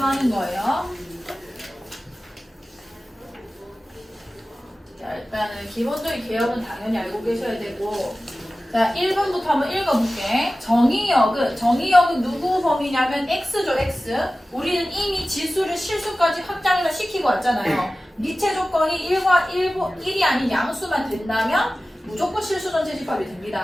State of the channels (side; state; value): both; normal; correlation 0.96